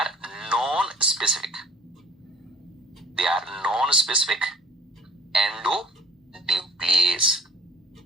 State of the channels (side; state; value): both; normal; correlation 0.52